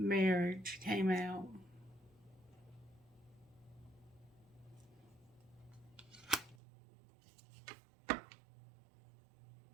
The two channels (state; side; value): drops out; left; at 6.6 s